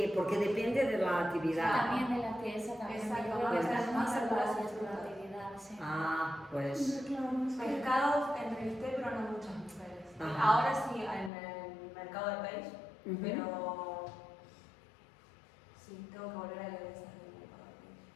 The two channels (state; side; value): drops out; right; at 11.3 s